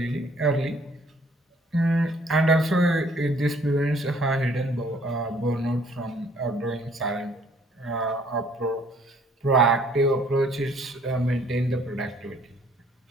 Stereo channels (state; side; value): normal; both; correlation 0.60